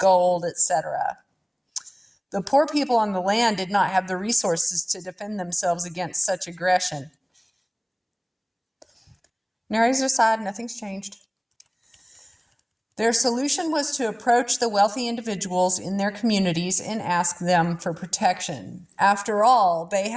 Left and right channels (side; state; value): both; identical; correlation 1.00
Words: etc. The poor people on the land did not have the resources to defend themselves against such aggression. Narrator's aside, nothing's changed. Their solution was to approach the wealthy individuals in their communities and ask them for protection. After all, they